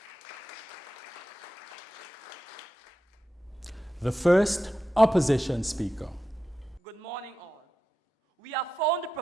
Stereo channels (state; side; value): normal; both; correlation 0.90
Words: you. The first opposition speaker. Good morning, all. We have found the